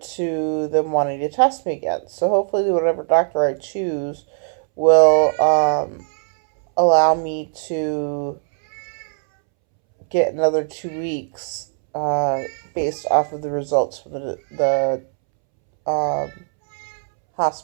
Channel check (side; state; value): left; silent; 66 dB below the other